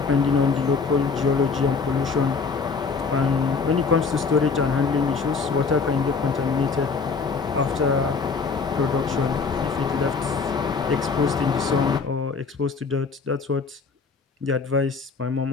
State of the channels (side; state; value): right; quieter; 5.0 dB